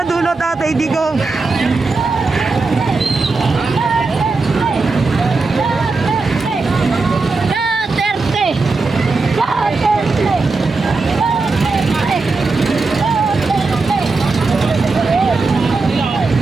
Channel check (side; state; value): left; quieter; 3.9 dB